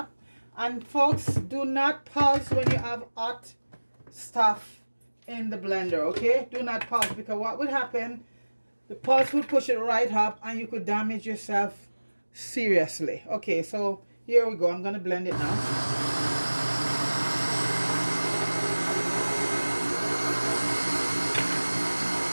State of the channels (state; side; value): inverted; both; correlation -1.00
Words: And folks, do not pause when you have hot stuff in the blender, okay? Do not pause, because what would happen, the pulse would push it right up and you could damage yourself seriously. Okay, so here we go. I'm gonna blend it now.